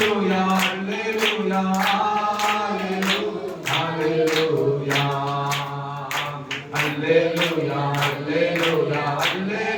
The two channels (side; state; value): both; identical; correlation 1.00